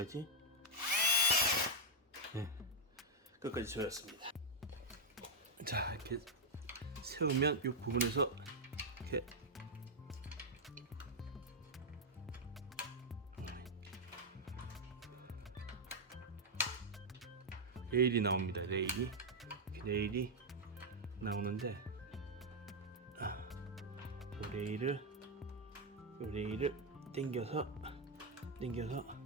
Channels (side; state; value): both; normal; correlation -0.01